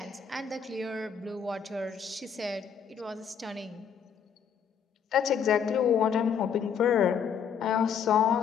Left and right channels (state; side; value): quieter; right; 7.3 dB